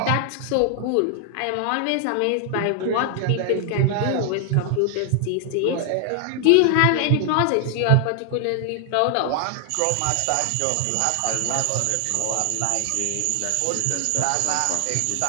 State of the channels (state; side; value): different; both; correlation 0.00